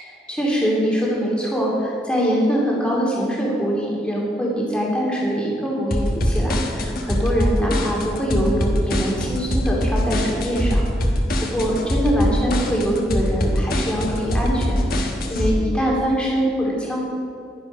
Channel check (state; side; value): normal; both; correlation 0.78